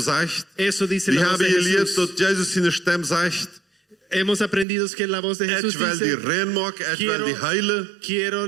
Eso dice Die la voz de hebben geleerd Jesús. dat Jezus zijn stem zegt. Hemos aprendido que la voz de Jesús Het wil die dice, rein maken, het wil die heilen. quiero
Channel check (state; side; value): drops out; left; at 4.7 s